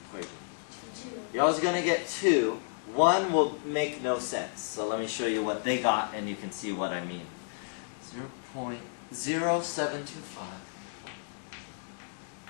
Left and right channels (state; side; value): silent; right; digital silence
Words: equation? 2. You're always going to get 2. 1 will make no sense. So let me show you what they got and you can see what I mean. 0.0725.